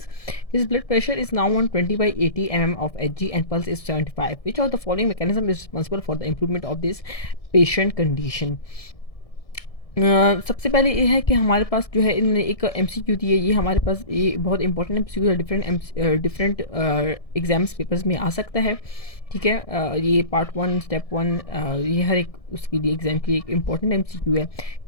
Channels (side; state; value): right; late; 1.6 ms